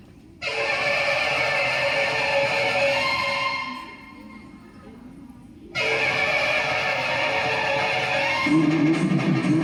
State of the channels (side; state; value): both; identical; correlation 1.00